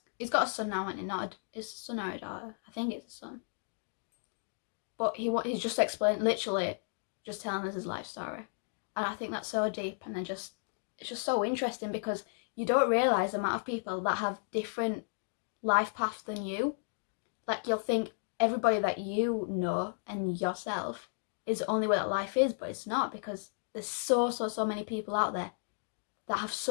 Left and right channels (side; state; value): right; silent; digital silence